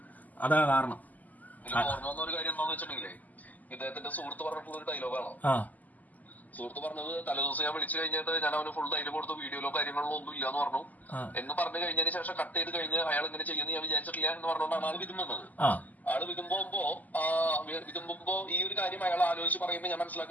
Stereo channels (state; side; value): late; right; 0.080 ms